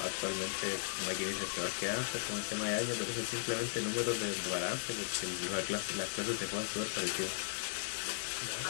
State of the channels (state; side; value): silent; right; digital silence